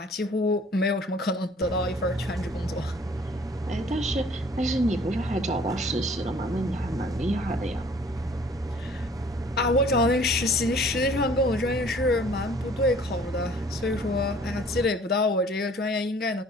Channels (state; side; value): normal; both; correlation 0.54